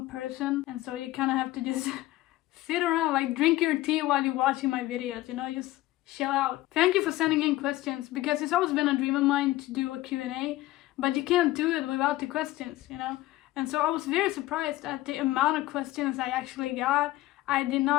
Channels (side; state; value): right; quieter; 17.1 dB